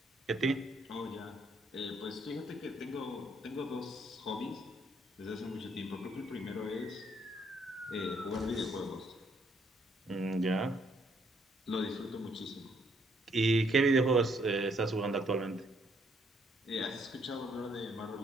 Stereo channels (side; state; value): both; normal; correlation 0.70